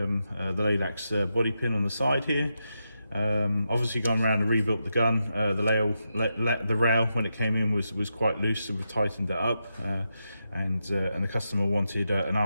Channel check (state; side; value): inverted; both; correlation -0.86